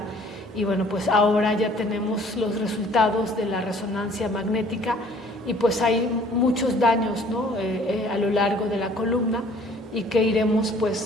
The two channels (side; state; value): both; normal; correlation 0.55